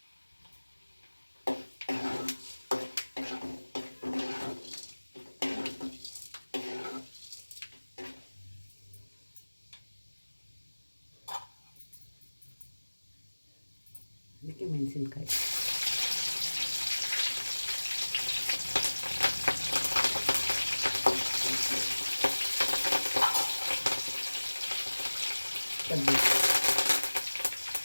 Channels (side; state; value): both; inverted; correlation -1.00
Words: ಅದಕ್ಕೆ ಮೆಣಸಿನ್ಕಾಯಿ, ಕಡ್ಡಿ,